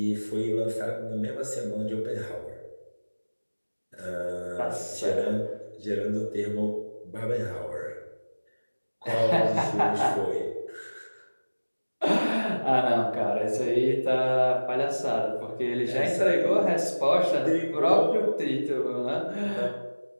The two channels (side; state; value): both; inverted; correlation -1.00